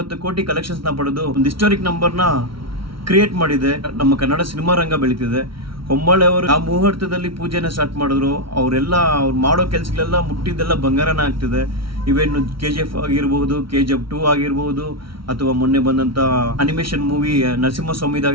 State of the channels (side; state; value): left; late; 0.74 ms